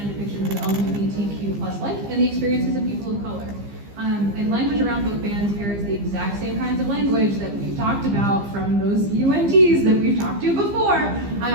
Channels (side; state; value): left; late; 15 ms